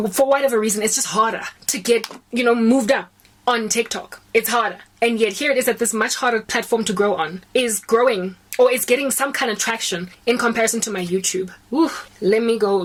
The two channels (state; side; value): identical; both; correlation 1.00